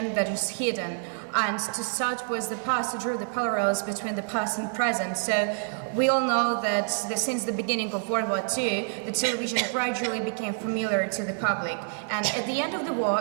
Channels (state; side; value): silent; left; digital silence